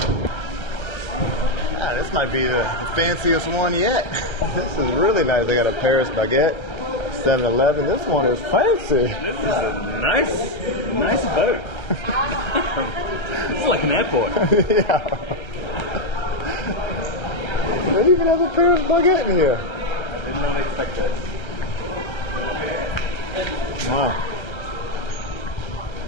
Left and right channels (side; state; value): right; late; 1.3 ms